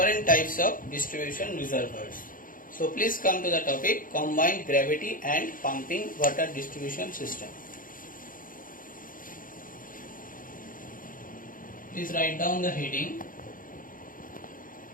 types of distribution reservoirs. So please come to the topic combined gravity and pumping water distribution system. Please write down the heading.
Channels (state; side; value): late; right; 0.40 ms